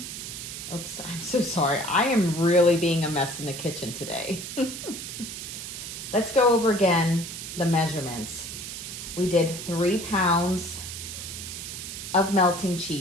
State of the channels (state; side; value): noise; right; hiss, 8 dB below the sound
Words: Oops, I'm so sorry. I am really being a mess in the kitchen today. Let's go over again the measurements. We did 3 pounds of melting